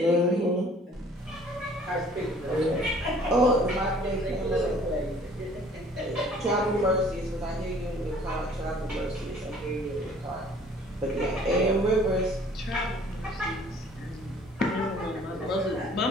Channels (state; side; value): normal; both; correlation 0.54